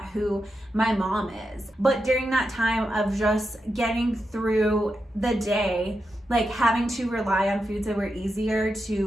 who my mom is. But during that time of just getting through the day, having to rely on foods that were easier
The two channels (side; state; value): both; normal; correlation 0.87